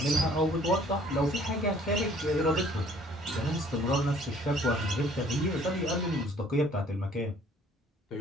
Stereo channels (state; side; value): normal; both; correlation 0.57